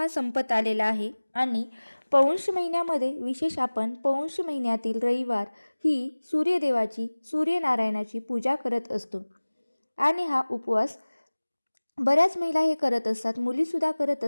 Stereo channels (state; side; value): inverted; both; correlation -1.00